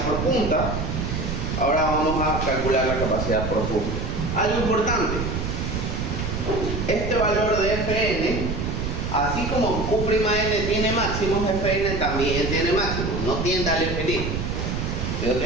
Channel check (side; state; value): right; noise; rumble, 3 dB below the sound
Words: por punta. Ahora vamos a calcular la capacidad por fuste. Algo importante, este valor de Fn, así como U'N tiene máximos, Fn también tiene máximos, no tiende al infinito, sino